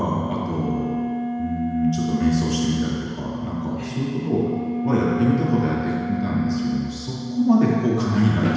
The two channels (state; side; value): identical; both; correlation 1.00